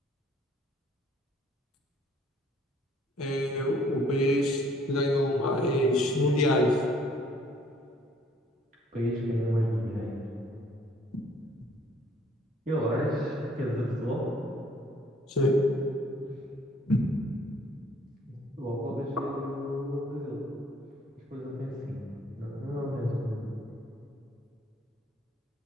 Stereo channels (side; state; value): both; normal; correlation 0.60